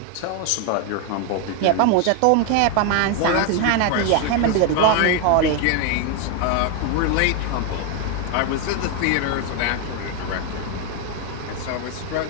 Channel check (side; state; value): both; different; correlation 0.01